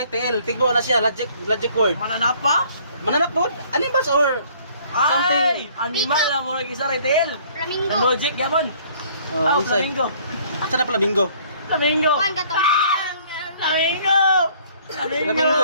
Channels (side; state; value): both; inverted; correlation -0.58